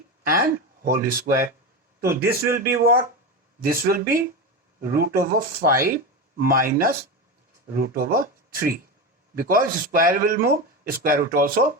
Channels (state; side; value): normal; both; correlation 0.20